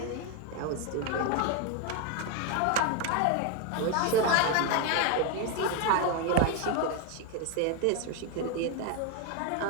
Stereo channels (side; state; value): both; different; correlation 0.01